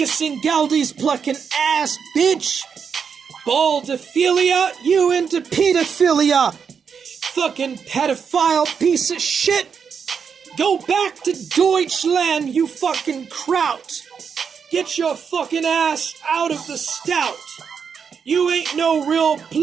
Galdi's plucking ass, bitch. Baldophilia, you into pedophilia. Fucking pedophile piece of shit. Go back to Deutschland, you fucking kraut. Get your fucking ass out of the stout. You ain't no real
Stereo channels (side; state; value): left; quieter; 6.5 dB